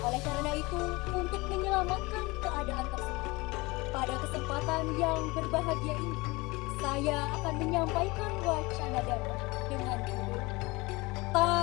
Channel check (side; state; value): right; quieter; 23.5 dB